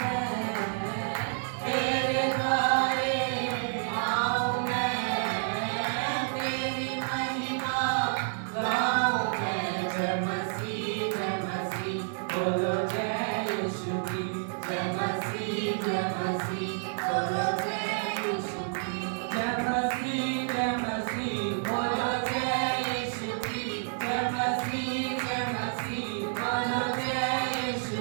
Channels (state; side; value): silent; left; 58 dB below the other